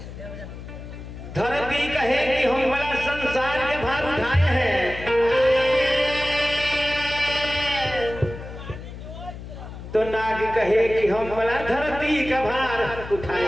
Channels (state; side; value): noise; left; hum, 12 dB below the sound